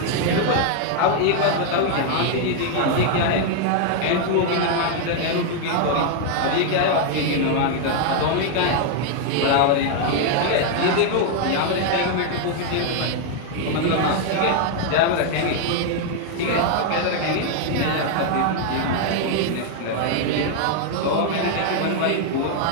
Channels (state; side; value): different; both; correlation 0.00